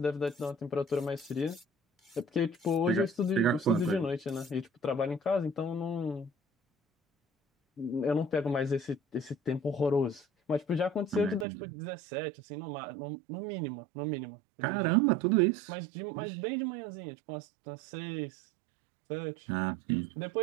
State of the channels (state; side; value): drops out; left; at 11.5 s